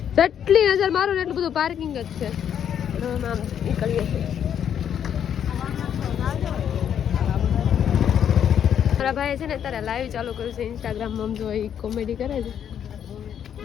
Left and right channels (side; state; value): right; quieter; 9.0 dB